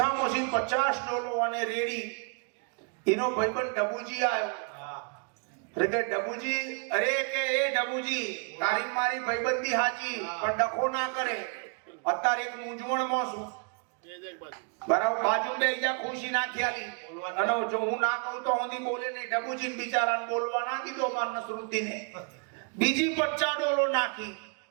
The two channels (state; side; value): quieter; left; 38.9 dB